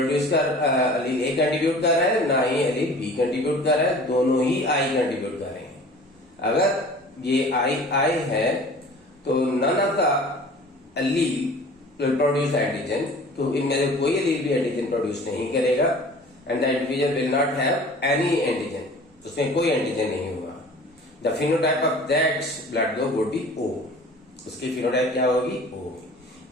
कर अलील ए कंट्रीब्यूट कर रहा है, ना ही अलील बी कंट्रीब्यूट कर रहा है, दोनों ही आई कंट्रीब्यूट कर रहे हैं। अगर ये आई है तो none of the allele will produce antigen, तो इनमें से कोई अलील भी एंटीजन प्रोड्यूस नहीं करेगा, and the individual will not have any antigen, उसमें कोई एंटीजन नहीं होगा। The phenotype of that blood group would be O, उसकी फिनोटाइप क्या होगी, ओ।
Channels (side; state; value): both; normal; correlation 0.45